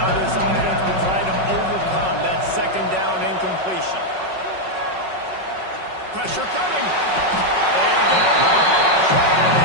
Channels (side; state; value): left; late; 5.4 ms